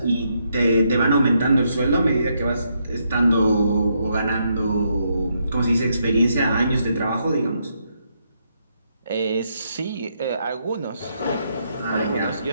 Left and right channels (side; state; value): both; inverted; correlation -0.78